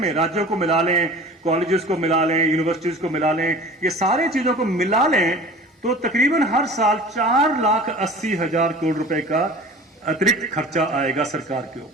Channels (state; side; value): normal; both; correlation 0.41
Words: राज्यों को मिला लें, कॉलेजेस को मिला लें, यूनिवर्सिटीज को मिला लें, ये सारे चीजों को मिला लें, तो तकरीबन हर साल 4,80,000 करोड़ रुपए का अतिरिक्त खर्चा आएगा सरकार के